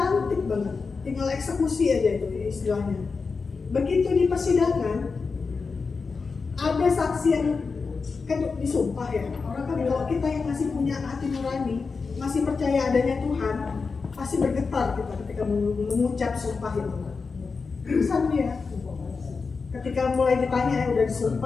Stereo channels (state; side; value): quieter; right; 4.7 dB